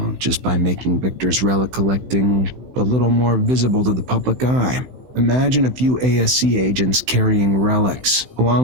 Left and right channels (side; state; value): left; late; 16 ms